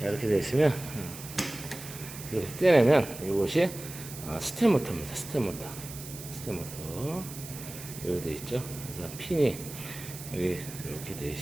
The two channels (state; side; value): noise; right; hiss, 12 dB below the sound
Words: 이렇게 되어 있으면 이렇게 떼내면 이것이 스텝 모터입니다. 스텝 모터 여기 되어 있죠. 그래서 핀이 여기 이렇게 되어